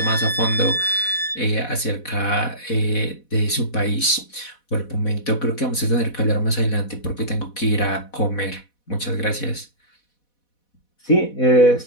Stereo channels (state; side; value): late; right; 4.1 ms